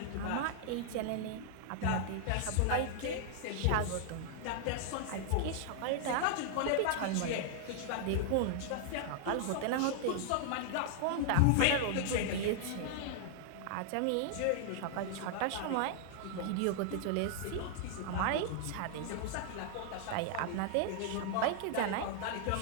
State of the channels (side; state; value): both; different; correlation -0.01